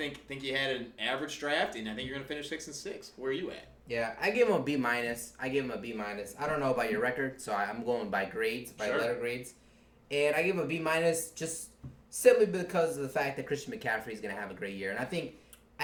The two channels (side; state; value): both; identical; correlation 1.00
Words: you had an average draft, and I think you're going to finish 6-6. Where are you at? Yeah, I give him a B-. I don't know about your record, so I'm going by grades, letter grades. And I give him a B- just simply because of the fact that Christian McCaffrey is going to have a great year. And I think